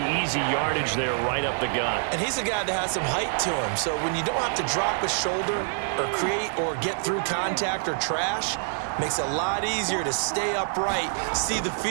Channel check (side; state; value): left; silent; digital silence